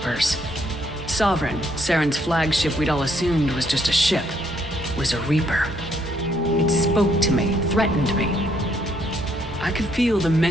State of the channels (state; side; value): normal; both; correlation 0.71